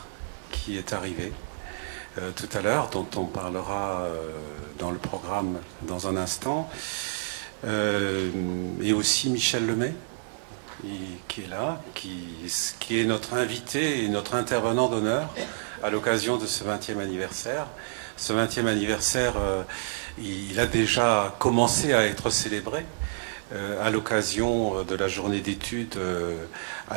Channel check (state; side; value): silent; left; 59 dB below the other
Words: qui est arrivée tout à l'heure, dont on parlera dans le programme dans un instant. Et aussi Michel Lemay, qui est là, qui est notre invité et notre intervenant d'honneur à l'occasion de ce 20e anniversaire. Ce 20e anniversaire, il a déjà commencé à être célébré à l'occasion de la journée d'études